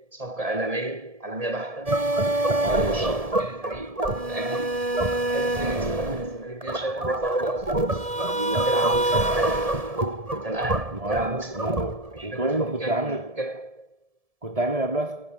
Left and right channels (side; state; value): left; late; 1.7 ms